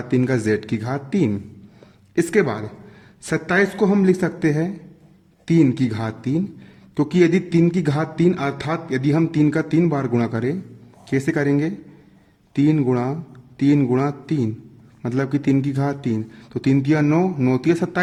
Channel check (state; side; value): identical; both; correlation 1.00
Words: 3 का z की घात 3। इसके बाद 27 को हम लिख सकते हैं 3 की घात 3, क्योंकि यदि 3 की घात 3 अर्थात यदि हम 3 का 3 बार गुणा करें, कैसे करेंगे? 3 गुणा 3 गुणा 3 मतलब कि 3 की घात 3, तो 3 तिया 9, 9 तिया